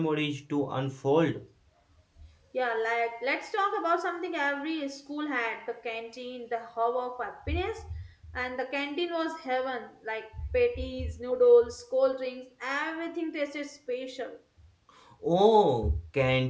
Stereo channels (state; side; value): identical; both; correlation 1.00